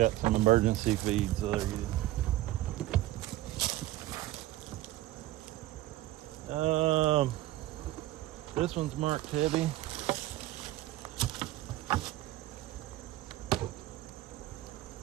some emergency feeds, so they're good. This one's marked heavy.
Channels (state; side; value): quieter; left; 15.7 dB